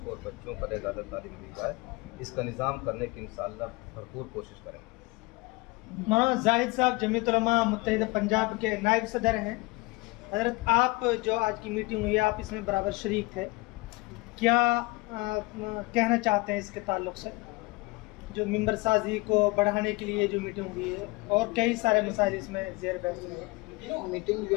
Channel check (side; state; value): right; quieter; 24.2 dB